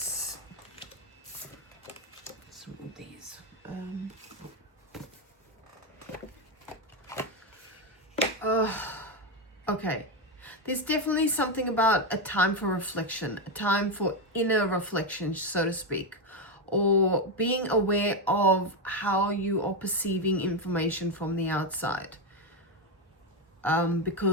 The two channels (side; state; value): both; normal; correlation 0.08